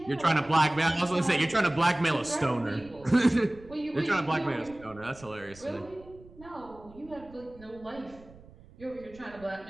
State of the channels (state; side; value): noise; right; rumble, 22 dB below the sound